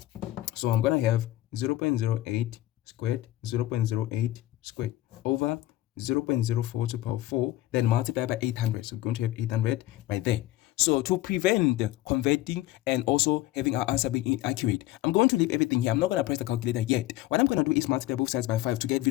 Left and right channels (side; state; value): right; quieter; 15.9 dB